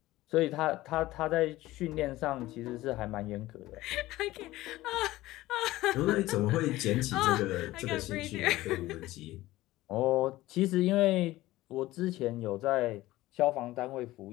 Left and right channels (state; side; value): quieter; right; 17.3 dB